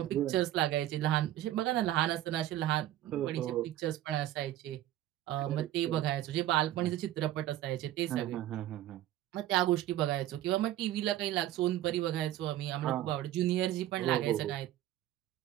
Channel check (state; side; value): quieter; left; 13.5 dB